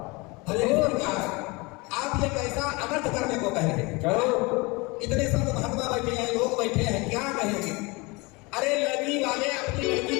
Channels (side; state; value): right; quieter; 25.7 dB